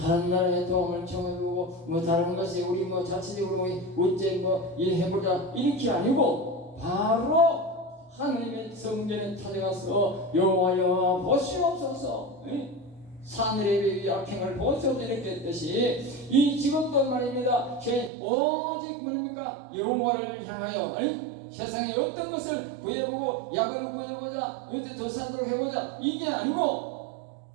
나라에 도움을 청해보고 뭐 다른 것이 우리 뭐 자체적으로 뭐 어째 뭐 일해보자 이렇게 아니고 바로 하나님의 성전에 찾아가서 여호와여 보시옵소서 사내립의 악행을 보소서 이렇게 했듯이 이 지금도 말입니다. 오직 뭡니까? 여호와를 향하여 세상에 어떤 것을 구해보고 약을 구해보자 어디 더 살도록 해보자 이게 아니고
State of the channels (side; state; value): left; drops out; at 18.1 s